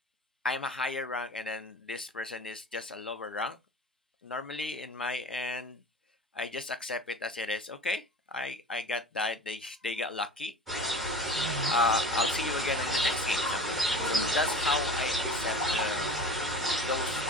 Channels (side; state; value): both; normal; correlation 0.38